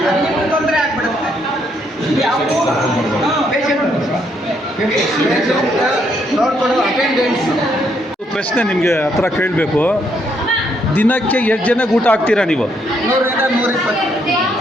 ನಿಮ್ಗೆ ತೊಂದರೆ ಆಗ್ಬಿಡುತ್ತೆ. ಯಾವುದು ನೋಡ್ಕೊಂಡು ಅಟೆಂಡೆನ್ಸ್. ಪ್ರಶ್ನೆ ನಿಮಗೆ ಹತ್ರ ಕೇಳಬೇಕು. ದಿನಕ್ಕೆ ಎಷ್ಟು ಜನಕ್ಕೆ ಊಟ ಹಾಕ್ತೀರಾ ನೀವು?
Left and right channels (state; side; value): normal; both; correlation 0.73